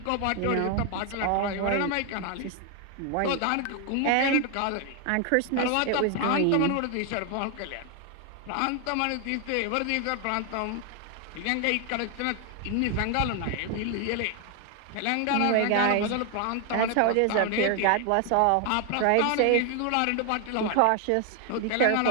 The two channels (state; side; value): different; both; correlation 0.00